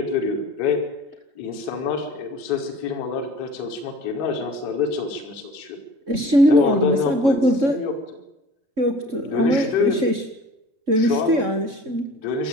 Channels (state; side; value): late; left; 3.6 ms